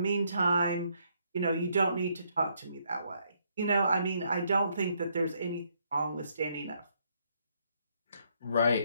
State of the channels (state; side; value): inverted; both; correlation -0.72